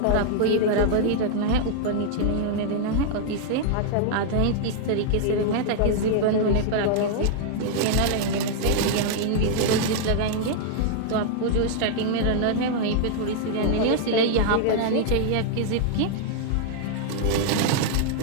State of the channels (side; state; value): both; different; correlation 0.00